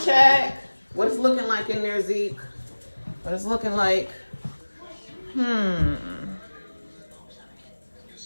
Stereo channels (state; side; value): inverted; both; correlation -1.00